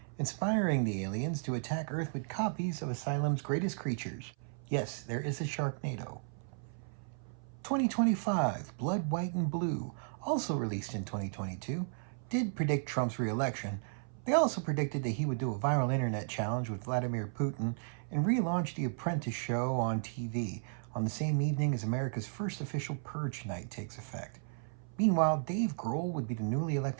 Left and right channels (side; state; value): left; silent; 55 dB below the other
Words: inspiring the aliens to attack Earth with copies of Asylum's greatest creatures. Yes, there is a Sharknado. 2025 Blood, White, and Blue, also released in 2022, did predict Trump's re-election. They also predicted that he would do a viral internet challenge with Vladimir Putin and relaunch The Apprentice show on TV on the same evening as America's first official purge night takes effect. Meanwhile, Dave Grohl would be the newly